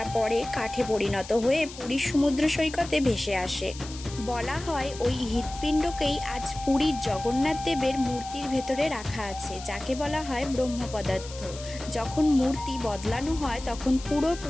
পরে কাঠে পরিণত হয়ে পুরীর সমুদ্র সৈকতে ভেসে আসে। বলা হয় ওই হৃৎপিণ্ডকেই আজ পুরীর জগন্নাথ দেবের মূর্তির ভেতরে রাখা আছে, যাকে বলা হয় ব্রহ্ম পদার্থ। যখন মূর্তি বদলানো হয় তখন পুরো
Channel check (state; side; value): noise; left; hiss, 14 dB below the sound